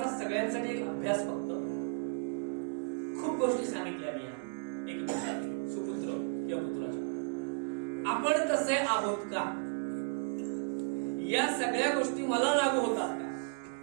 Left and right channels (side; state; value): left; silent; 55 dB below the other